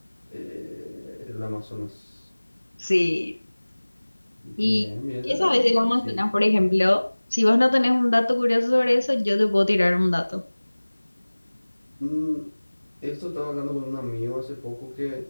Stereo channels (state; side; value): inverted; both; correlation -1.00